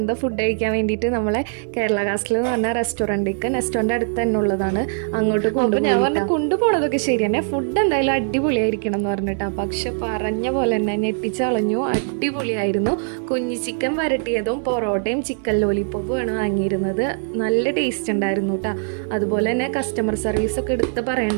ഫുഡ് കഴിക്കാൻ വേണ്ടിയിട്ട് നമ്മളെ കേരള കാസ്റ്റിൽ എന്ന് പറഞ്ഞ റെസ്റ്റോറൻറ്റിലേക്ക്, നെസ്റ്റോൻ്റെ അടുത്ത് തന്നെ ഉള്ളതാണ്, അങ്ങോട്ട് കൊണ്ടുപോകും. ഞാൻ പറഞ്ഞു കൊണ്ടുപോകണതൊക്കെ ശരി തന്നെ, ഫുഡ് എന്തായാലും അടിപൊളിയായിരിക്കണം എന്ന് പറഞ്ഞിട്ടാ. പക്ഷെ പറഞ്ഞ പോലെ തന്നെ ഞെട്ടിച്ചളഞ്ഞു, അടിപൊളിയായിരുന്നു. കുഞ്ഞി ചിക്കൻ വരട്ടിയതും പൊറോട്ടയും ചിക്കൻ ലോലിപ്പോപ്പുമാണ് വാങ്ങിയിരുന്നത്. നല്ല ടേസ്റ്റ് ഉണ്ടായിരുന്നു കേട്ടോ. അതുപോലെ തന്നെ കസ്റ്റമർ സർവീസ് ഒക്കെ എടുത്ത്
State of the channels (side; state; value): left; silent; 60 dB below the other